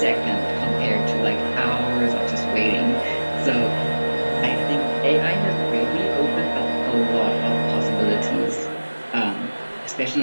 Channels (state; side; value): inverted; both; correlation -1.00